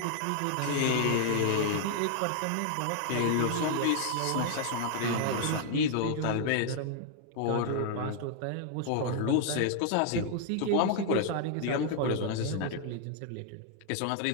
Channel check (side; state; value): both; different; correlation 0.00